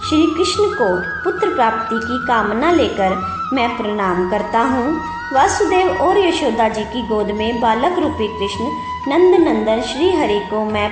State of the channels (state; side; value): identical; both; correlation 1.00